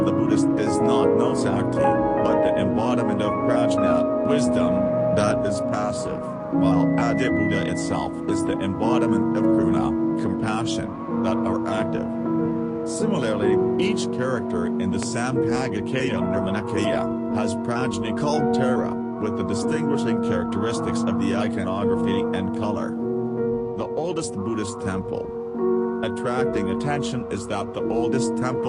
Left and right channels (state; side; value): identical; both; correlation 1.00